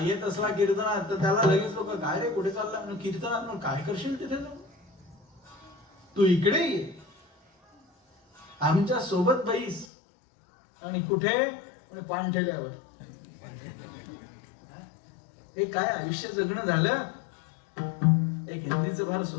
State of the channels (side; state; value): right; drops out; at 9.9 s